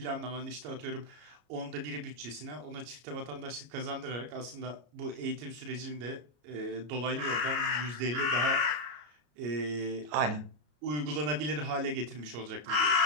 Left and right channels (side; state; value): left; late; 33 ms